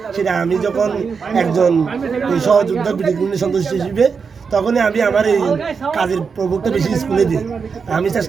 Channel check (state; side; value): quieter; left; 5.6 dB